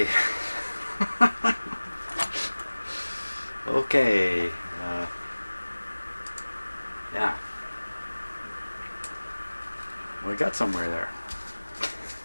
Okay. Yeah. We got somewhere there.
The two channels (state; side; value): inverted; both; correlation -1.00